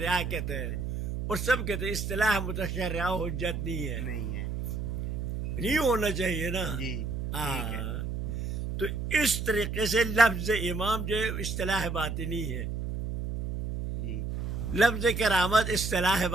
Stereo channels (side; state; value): right; noise; hum, 3 dB below the sound